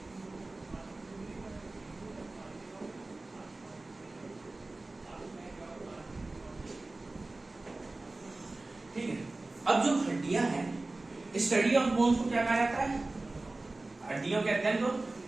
ठीक है। अब जो हड्डियां हैं, स्टडी ऑफ बोन्स को क्या कहा जाता है? हड्डियों के अध्ययन को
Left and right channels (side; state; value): left; quieter; 3.1 dB